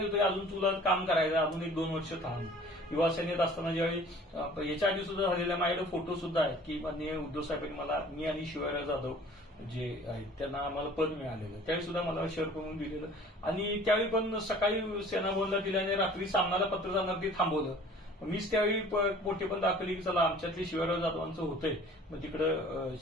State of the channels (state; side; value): normal; both; correlation 0.50